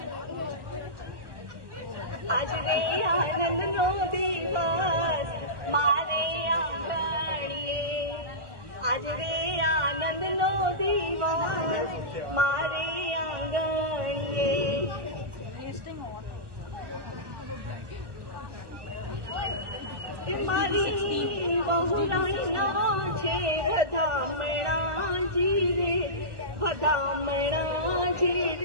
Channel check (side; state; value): left; late; 1.3 ms